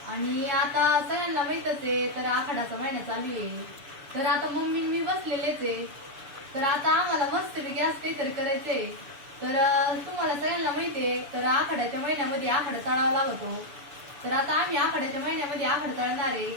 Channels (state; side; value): late; left; 6.9 ms